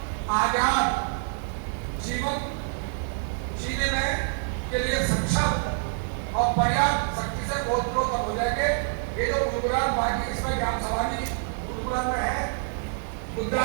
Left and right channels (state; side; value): silent; left; 60 dB below the other